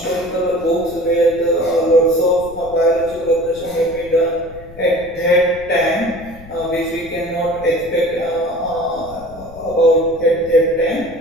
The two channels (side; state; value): left; noise; rumble, 19 dB below the sound